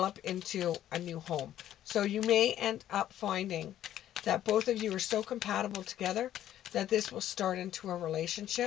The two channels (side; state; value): right; quieter; 11.9 dB